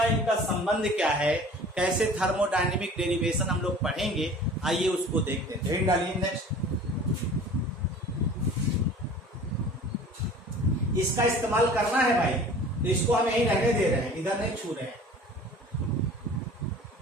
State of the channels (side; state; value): both; normal; correlation 0.44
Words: संबंध क्या है, कैसे थर्मोडायनेमिक डेरिवेशन हम लोग पढ़ेंगे, आइए उसको देखते हैं। हेड डालिए नेक्स्ट। इसका इस्तेमाल करना है भाई, तो इसको हम यहीं रहने दे रहे हैं, इधर नहीं छू रहे हैं।